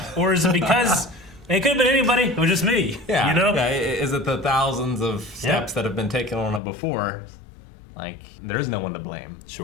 or is it because it could have been anybody? It was just me. Yeah. You know? Yeah. Is it the thousands of steps that have been taken on it before? Like, there's no one to blame.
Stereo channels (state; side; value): drops out; right; at 6.6 s